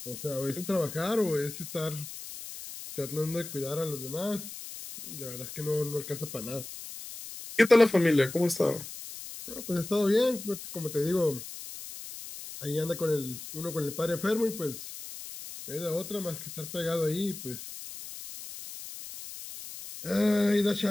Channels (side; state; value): left; noise; hiss, 11 dB below the sound